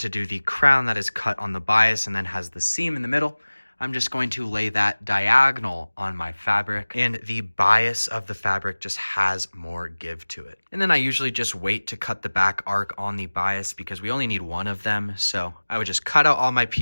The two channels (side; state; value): both; inverted; correlation -1.00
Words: do the crown that is cut on the bias and then has the seam in the middle, I'm just going to lay that diagonal on my fabric, and the bias of the fabric just has more give to it. And then I usually just wait to cut the back arc on the bias because we only need one of them. So I would just cut out all my